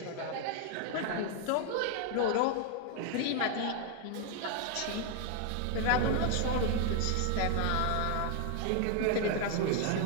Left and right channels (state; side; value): different; both; correlation 0.00